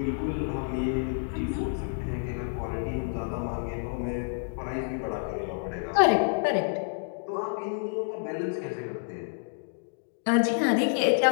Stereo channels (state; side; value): silent; right; digital silence